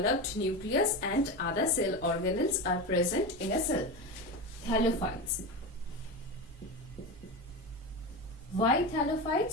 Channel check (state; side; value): normal; both; correlation 0.21